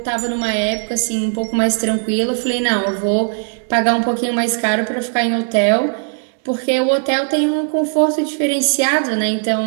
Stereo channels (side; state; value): left; silent; 67 dB below the other